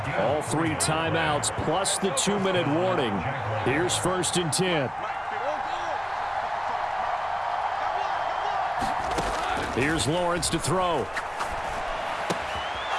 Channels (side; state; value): both; identical; correlation 1.00